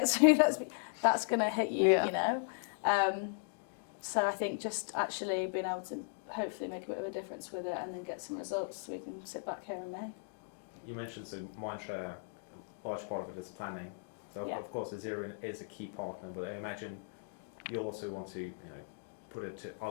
through, that's going to hit you, you know. So I think just actually being able to hopefully make a bit of a difference with it and then get some results so we can sit back here in May. You mentioned so Mindshare, a large part of it is planning. So of course Azerion is a key partner, but I imagine you'll also want to put it to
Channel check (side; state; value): right; silent; digital silence